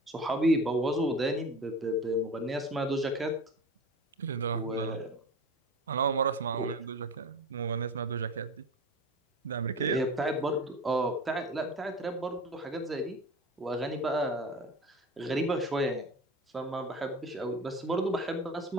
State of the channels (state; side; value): normal; both; correlation 0.34